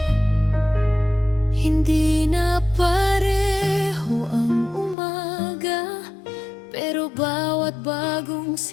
Hindi na pareho ang umaga, pero bawat bagong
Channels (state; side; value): drops out; right; at 5.0 s